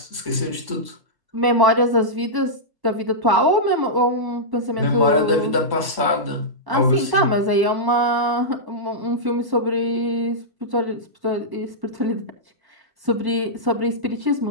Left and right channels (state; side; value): late; left; 1.0 ms